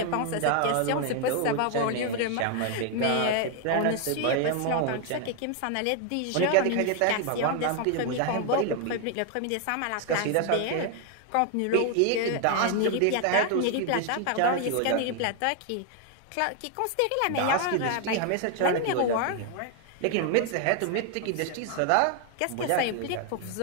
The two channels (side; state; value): both; different; correlation 0.00